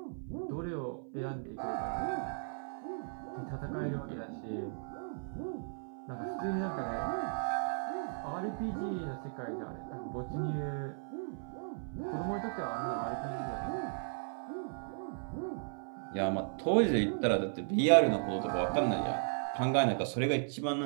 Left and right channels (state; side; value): silent; left; 54 dB below the other